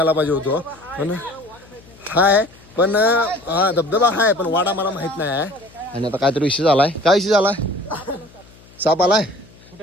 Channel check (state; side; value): noise; left; hum, 25 dB below the sound